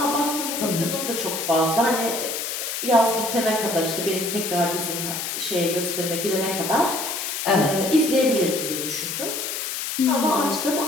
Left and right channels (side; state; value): left; noise; hiss, 4 dB below the sound